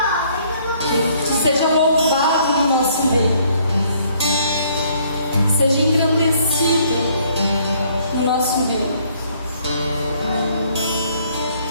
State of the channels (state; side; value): inverted; both; correlation -0.64